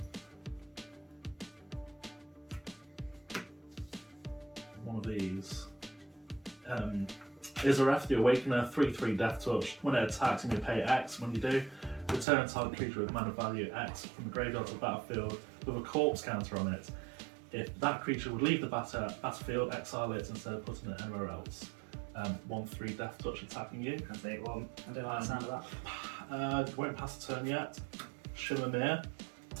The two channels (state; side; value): drops out; left; at 12.2 s